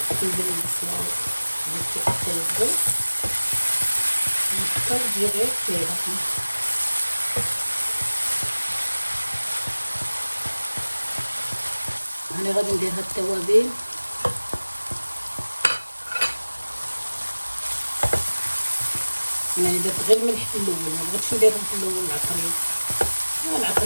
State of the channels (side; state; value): both; inverted; correlation -1.00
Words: ندير البصله طيب نختار تجي غير كذا. انا غادي ندير هاد التوابل. انا درت غير الملح في الاول، ما بغيتش نديرهم في الاول العطريه.